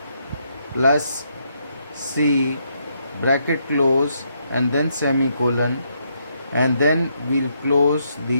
plus C bracket close and then semicolon, and then we'll close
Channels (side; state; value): both; inverted; correlation -0.76